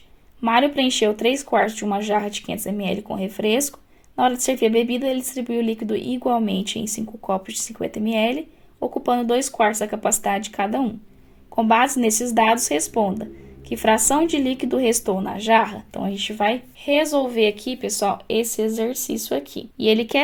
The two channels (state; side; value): identical; both; correlation 1.00